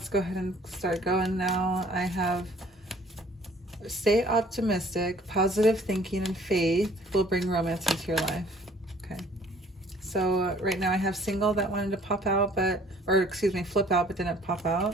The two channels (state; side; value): normal; both; correlation 0.55